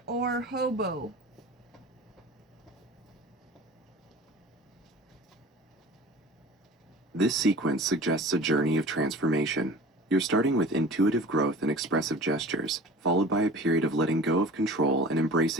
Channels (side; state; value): both; normal; correlation 0.41